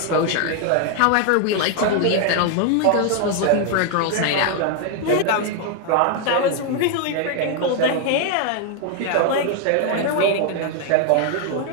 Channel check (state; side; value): different; both; correlation 0.00